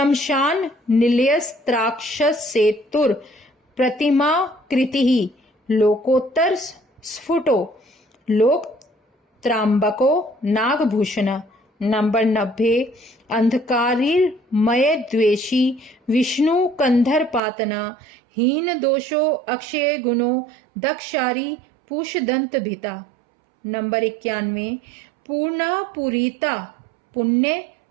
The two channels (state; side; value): drops out; left; at 17.4 s